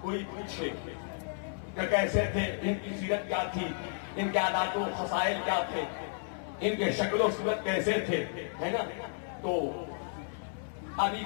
کوئی پوچھے کہ کیسے تھے، ان کی سیرت کیا تھی، ان کے عادات و خصائل کیا تھے، ان کے شکل و صورت کیسے تھے، ہے نا؟ تو ابھی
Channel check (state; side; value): silent; right; 56 dB below the other